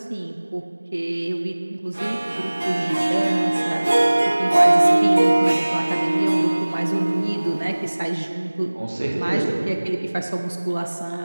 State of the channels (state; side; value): inverted; both; correlation -1.00